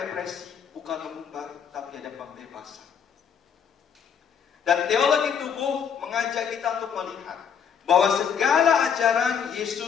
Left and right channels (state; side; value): quieter; right; 7.4 dB